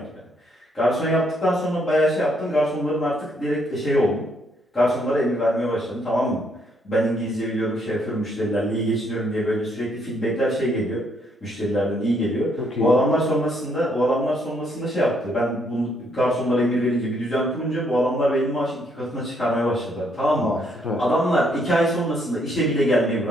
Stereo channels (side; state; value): both; normal; correlation 0.71